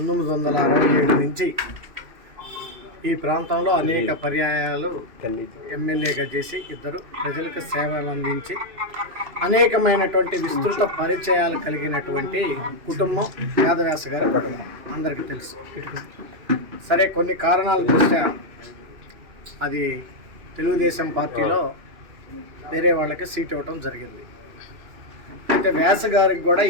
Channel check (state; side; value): late; left; 2.6 ms